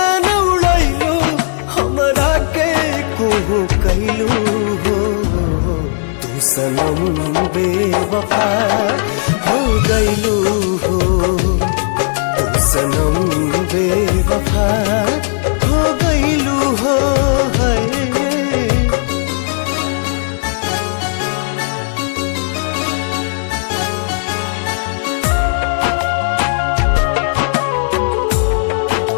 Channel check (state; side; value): silent; right; digital silence